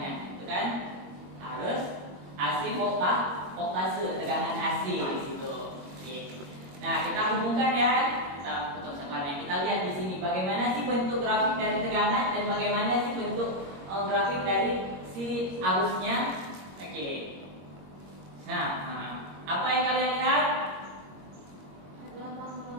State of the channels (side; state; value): left; late; 21 ms